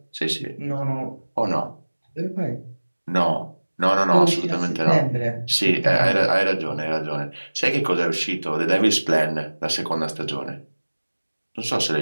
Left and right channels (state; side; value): inverted; both; correlation -1.00